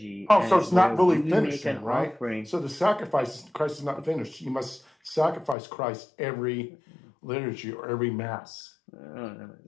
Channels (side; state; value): right; drops out; at 5.6 s